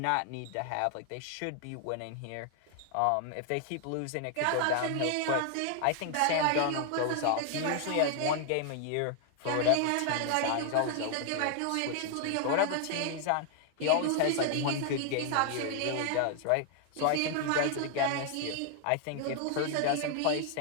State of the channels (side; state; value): both; different; correlation 0.00